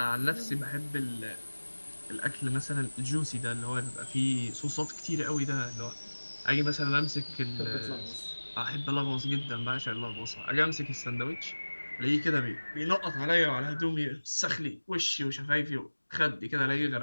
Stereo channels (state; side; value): inverted; both; correlation -1.00